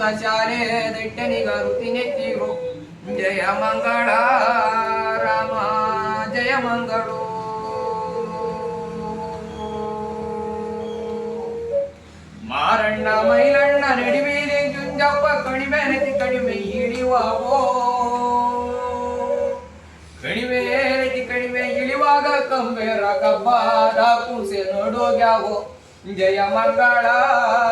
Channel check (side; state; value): both; identical; correlation 1.00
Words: ಶಾಲೆ ದಟ್ಟೆನಿಗಾರುತಿ ನೆತ್ತಿರು ಜಯ ಮಂಗಳ ರಾಮ ಜಯ ಮಂಗಳು ಮಾರಣ್ಣ ಮೈಲಣ್ಣ ನಡಿಮೇಲೆ ಜುಂಜಪ್ಪ ಕಡಿಮೆ ನೆತಿ ಕಡಿಮೆ ಇಳಿವಾವೋ ಕಡಿಮೆ ನೆತಿ ಕಡಿಮೆ ಇಳಿವಾಗ ಕಂಬೇರ ಕಬ್ಬಾದ ಕೂಸೆ ನೋಡೋಗ್ಯಾವೋ ಜಯ ಮಂಗಳ